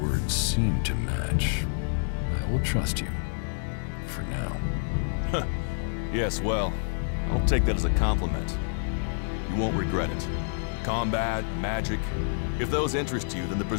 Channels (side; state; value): right; silent; digital silence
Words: words seem to match. I will trust you. For now. Yes, well, I'll take that as a compliment. You won't regret it. Combat, magic. If those interest you, then the